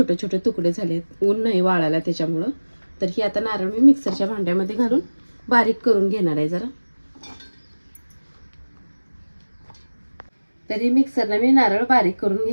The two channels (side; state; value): both; inverted; correlation -1.00